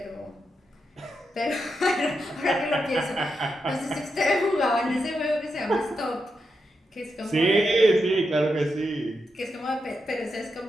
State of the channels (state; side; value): normal; both; correlation 0.85